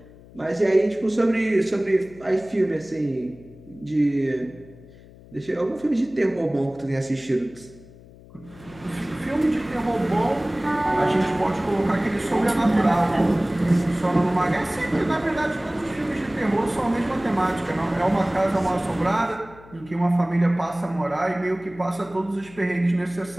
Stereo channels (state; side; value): noise; left; hum, 22 dB below the sound